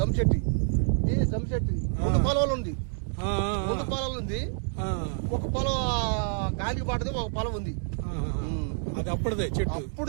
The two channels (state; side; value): silent; left; 59 dB below the other